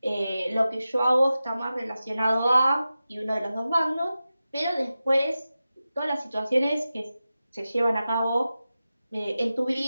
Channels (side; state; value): both; inverted; correlation -0.93